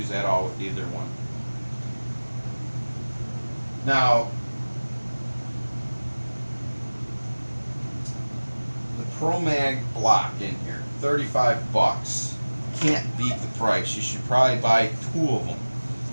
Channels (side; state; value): both; inverted; correlation -1.00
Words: at all with either one. Now, the Pro Mag block in here, $35. Can't beat the price. You should probably buy 2 of them,